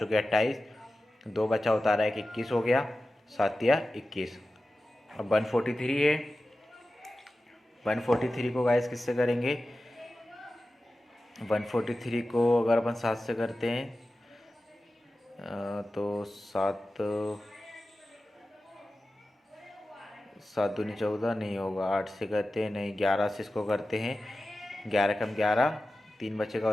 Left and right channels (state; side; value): normal; both; correlation 0.94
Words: 28, 2 बचा उतारा 1, 21 हो गया। 7 तिया 21। अब 143 है। 143 को गाइस किससे करेंगे? 143 को अगर अपन 7 से करते हैं तो 7 7 दूनी 14, नहीं होगा। 8 से करते हैं, नहीं। 11 से इसको करते हैं, 11 कम 11, 3 बचेगा